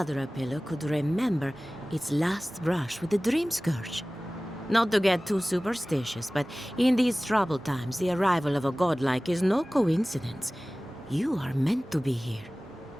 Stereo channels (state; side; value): normal; both; correlation 0.98